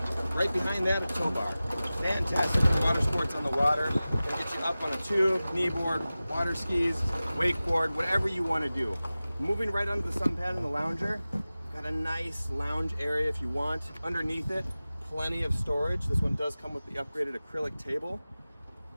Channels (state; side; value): inverted; both; correlation -0.97